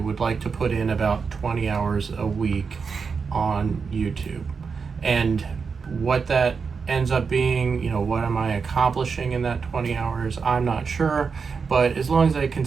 like to put in about 20 hours a week on YouTube. And what that ends up being, you know, what am I accomplishing in that 20 hours? I'm not sure. But as long as I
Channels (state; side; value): quieter; left; 5.4 dB